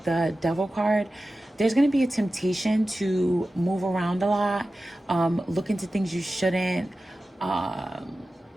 the Devil card, there's going to be a temptation to move around a lot, look into things you shouldn't,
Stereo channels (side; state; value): both; normal; correlation 0.95